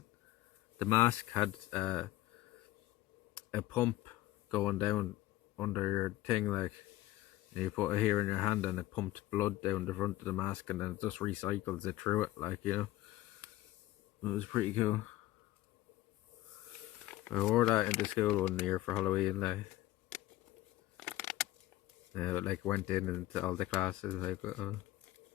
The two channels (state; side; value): quieter; right; 16.4 dB